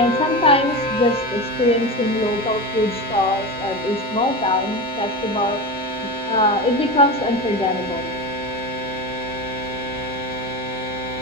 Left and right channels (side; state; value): both; normal; correlation 0.23